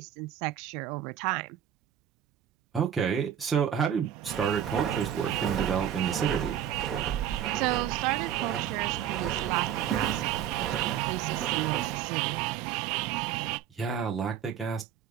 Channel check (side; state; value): left; quieter; 9.7 dB